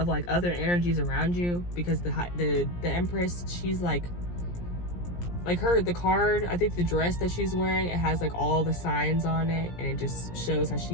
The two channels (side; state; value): right; late; 17 ms